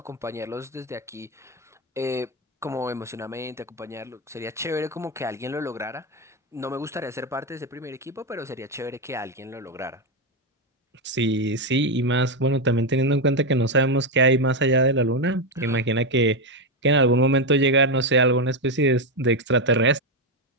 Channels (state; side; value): normal; both; correlation 0.07